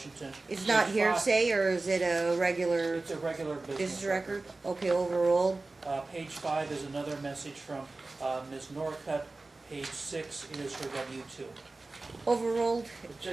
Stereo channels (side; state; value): left; quieter; 3.3 dB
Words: It's not Page 5 hearsay, or is it a regular It's a regular business business record? Okay, overruled. Page 5 is another message from Ms. Norcutt. Page 6 is her W-2. Overruled.